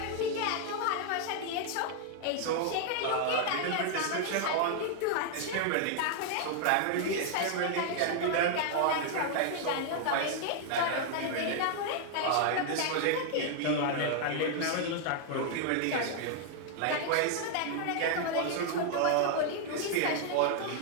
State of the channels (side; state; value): both; different; correlation 0.00